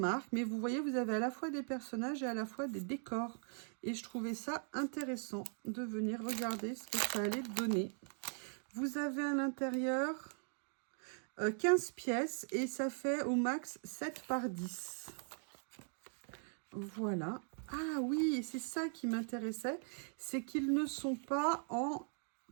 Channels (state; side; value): silent; left; 51 dB below the other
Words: Mais vous voyez, vous avez à la fois des personnages et à la fois des décors. Et je trouvais ça intéressant de venir regarder ce que ça allait donner. Vous avez à l'intérieur 15 pièces et ça fait au max 7 par 10. Voilà. Ah oui, c'est ça qui m'intéressait. C'est qu'ils ne sont pas en